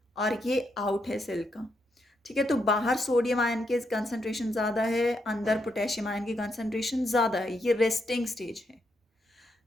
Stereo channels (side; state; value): both; normal; correlation 0.80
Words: और ये out है cell का. ठीक है, तो बाहर सोडियम आयन के कंसंट्रेशन ज़्यादा है, अंदर पोटेशियम आयन की कंसंट्रेशन ज़्यादा है. ये रेस्टिंग स्टेज है.